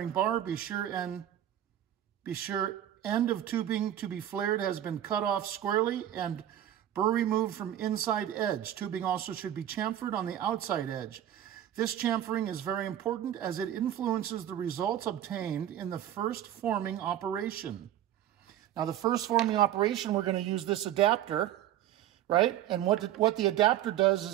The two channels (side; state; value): left; quieter; 11.6 dB